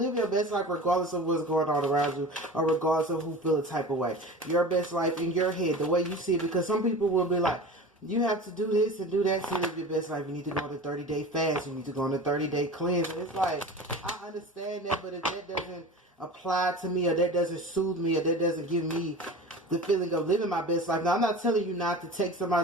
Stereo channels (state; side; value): normal; both; correlation 0.35